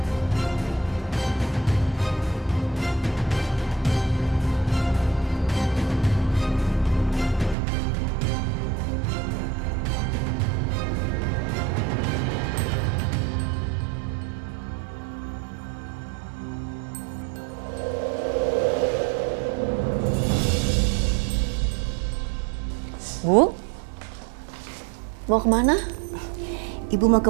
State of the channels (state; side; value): drops out; left; at 7.6 s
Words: Bu, mau kemana? Ibu mau